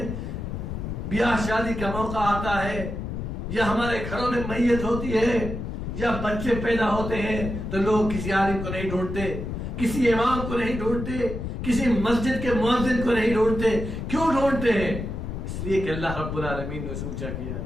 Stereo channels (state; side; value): noise; left; rumble, 5 dB below the sound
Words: بیاہ شادی کا موقع آتا ہے، یا ہمارے گھروں میں میت ہوتی ہے، یا بچے پیدا ہوتے ہیں، تو لوگ کسی عالم کو نہیں ڈھونڈتے، کسی امام کو نہیں ڈھونڈتے، کسی مسجد کے مؤذن کو نہیں ڈھونڈتے؟ کیوں ڈھونڈتے ہیں؟ اس لیے کہ اللہ رب العالمین نے اسے اونچا کیا ہے،